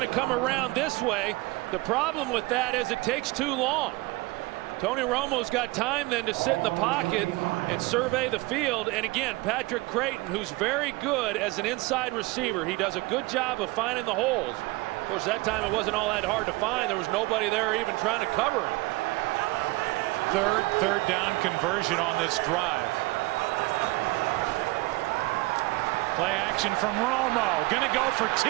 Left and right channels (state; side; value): quieter; left; 22.3 dB